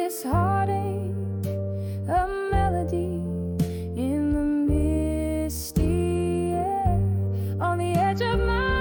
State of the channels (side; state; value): both; identical; correlation 1.00